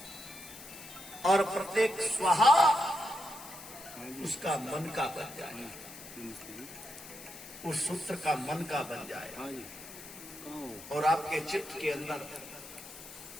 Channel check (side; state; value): left; noise; hiss, 15 dB below the sound